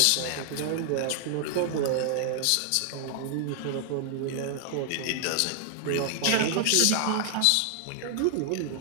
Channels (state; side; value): different; both; correlation 0.00